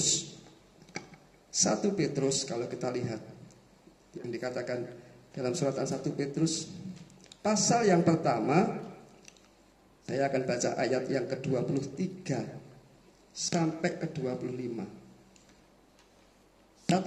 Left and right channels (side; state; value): both; identical; correlation 1.00